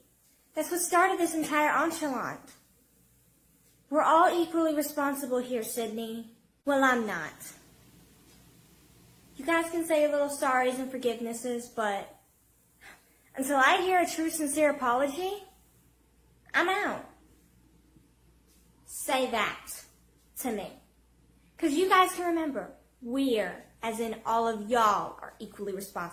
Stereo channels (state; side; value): identical; both; correlation 1.00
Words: That's what started this entire enchilada. We're all equally responsible here, Sydney. Well, I'm not. You guys can say little sorries and forgivenesses, but until I hear a true, sincere apology, I'm out. Say that to me. Because you guys can remember, we're, as in all of y'all, are equally